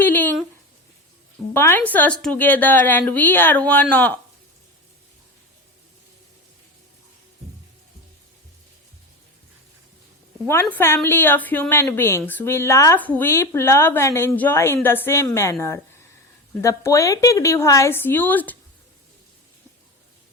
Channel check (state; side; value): normal; both; correlation 0.24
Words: binds us together and we are one family of human beings. We laugh, weep, love and enjoy in the same manner. The poetic device used